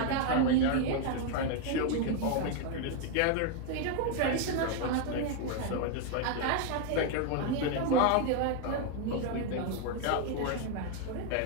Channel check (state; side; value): different; both; correlation 0.01